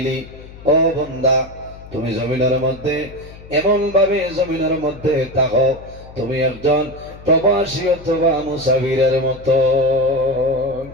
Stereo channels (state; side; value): noise; left; hum, 18 dB below the sound